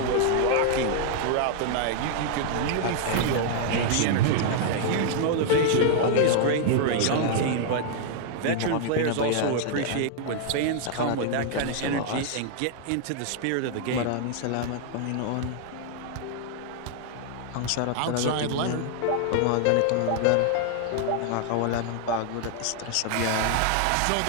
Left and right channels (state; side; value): different; both; correlation 0.00